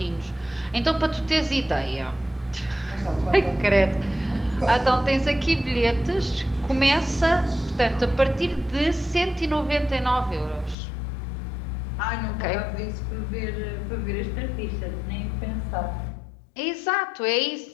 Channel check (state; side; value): drops out; right; at 10.8 s